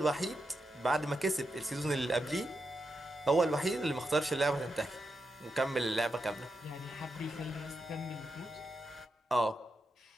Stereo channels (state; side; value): normal; both; correlation 0.86